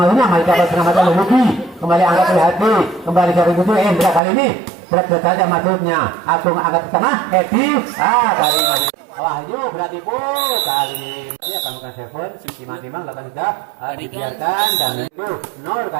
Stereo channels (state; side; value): drops out; left; at 4.2 s